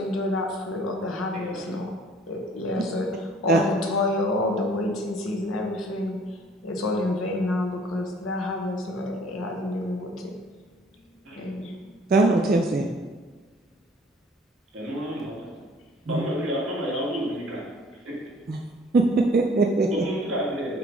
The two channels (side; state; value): both; normal; correlation 0.55